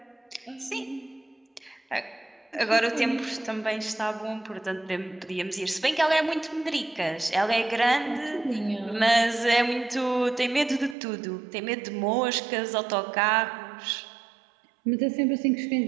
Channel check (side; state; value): left; drops out; at 11.0 s